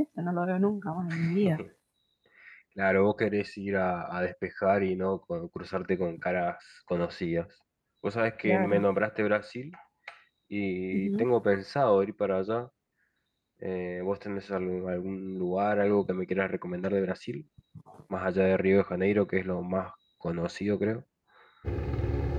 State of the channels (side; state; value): both; identical; correlation 1.00